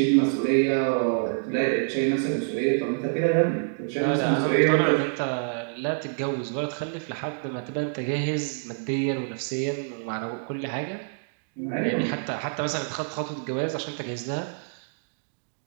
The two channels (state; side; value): silent; left; digital silence